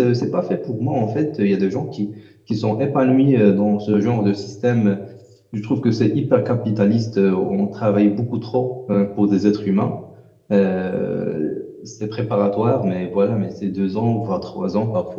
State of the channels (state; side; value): identical; both; correlation 1.00